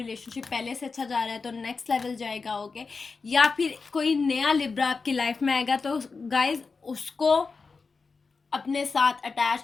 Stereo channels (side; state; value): right; quieter; 4.6 dB